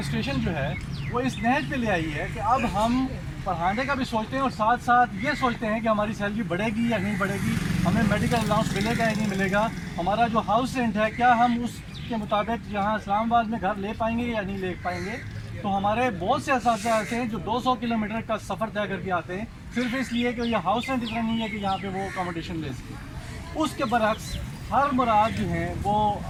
جو ہے وہ اس نہج پہ لے آئی ہے کہ اب ہم پڑھانے کا بھی سوچتے ہیں اور ساتھ ساتھ یہ سوچتے ہیں کہ ہماری سیلری بڑھے گی یا نہیں بڑھے گی, ہمیں میڈیکل الاؤنس ملے گا یا نہیں ملے گا, ہمارا جو ہاؤس رینٹ ہے کیا ہم اس کے مطابق یہاں اسلام آباد میں گھر لے پائیں گے یا نہیں لے پائیں گے. تو ہمارے بہت سے اساتذہ ایسے ہیں جو 200 کلومیٹر کا سفر طے کر کے آتے ہیں صرف اس لیے کہ یہ ہاؤس رینٹ اتنا نہیں ہے کہ یہاں پہ وہ اکاموڈیشن لے سکے. اس کے برعکس ہر مراد جو ہیں وہ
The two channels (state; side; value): identical; both; correlation 1.00